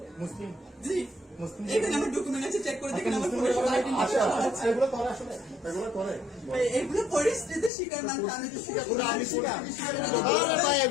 মুসলিম। জি, এখানে আমার ডকুমেন্ট আছে, চেক করে দেখেন। আমার ফোনে সব আইডি এগুলো করে আসলে এগুলো করে এগুলো পরিস্থিতির শিকার মানুষ। আমি তো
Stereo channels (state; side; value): drops out; right; at 7.7 s